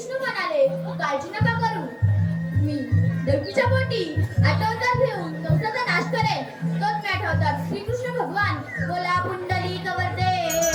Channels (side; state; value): both; identical; correlation 1.00